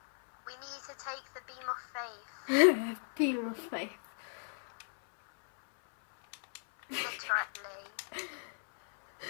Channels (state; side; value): silent; right; 54 dB below the other